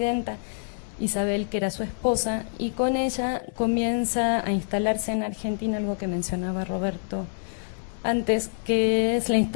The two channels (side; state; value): right; silent; digital silence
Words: Isabel, que era su esposa, y con ella comienza a instalarse en Argentina algo que mencionaba Roberto antes, que es la